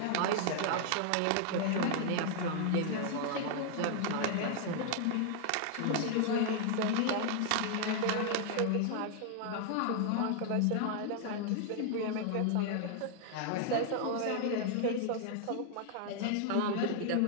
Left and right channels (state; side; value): different; both; correlation 0.00